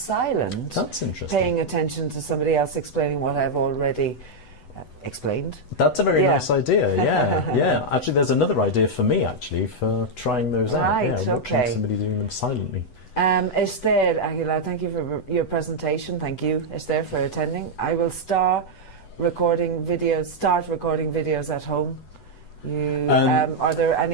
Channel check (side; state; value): right; late; 8.0 ms